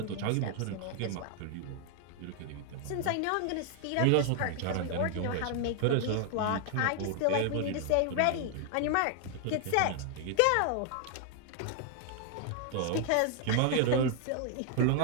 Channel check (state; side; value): different; both; correlation 0.00